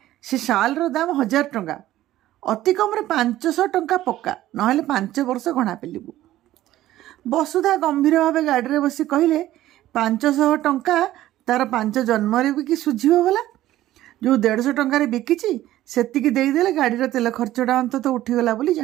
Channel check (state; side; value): quieter; left; 14.4 dB